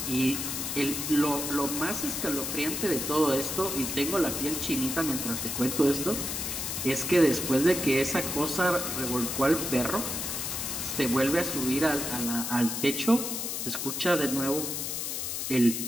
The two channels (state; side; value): noise; left; hiss, 3 dB below the sound